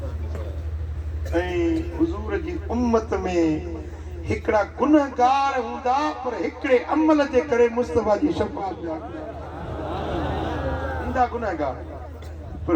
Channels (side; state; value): both; identical; correlation 1.00